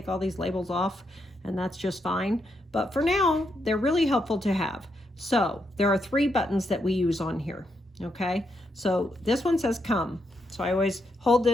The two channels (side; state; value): both; normal; correlation 0.80